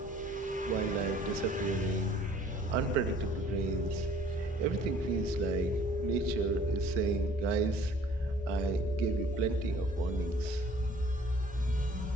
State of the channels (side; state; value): both; normal; correlation 0.54